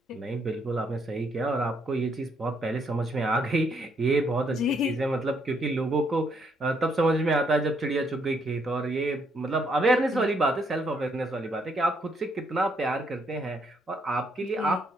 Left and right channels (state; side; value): normal; both; correlation 0.73